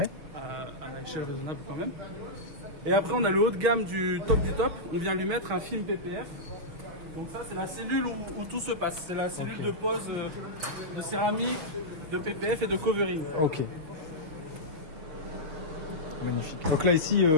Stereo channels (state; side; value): late; left; 6.3 ms